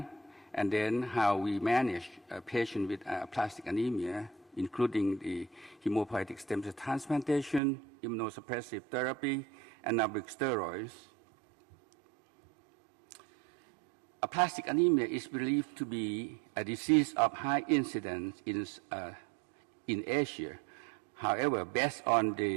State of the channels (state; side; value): drops out; left; at 7.6 s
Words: and then how we manage a patient with aplastic anemia, including the hematopoietic stem cell transplantation, immunosuppressive therapy, anabolic steroids. Aplastic anemia is believed to be a disease of high incidence in Asia. However, based on